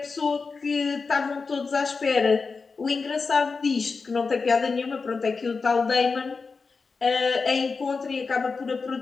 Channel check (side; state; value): right; quieter; 4.6 dB